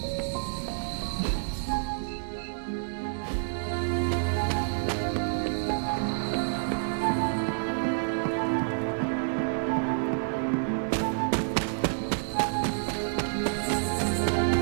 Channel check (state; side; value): silent; left; digital silence